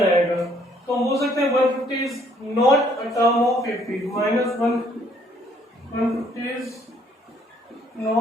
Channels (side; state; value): both; normal; correlation 0.64